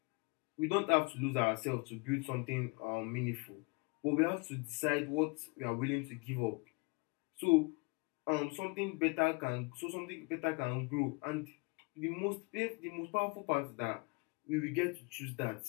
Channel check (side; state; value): right; quieter; 29.6 dB